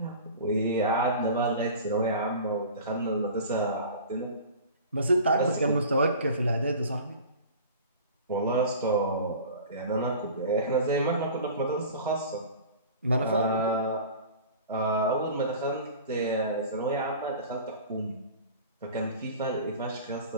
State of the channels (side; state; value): both; inverted; correlation -0.40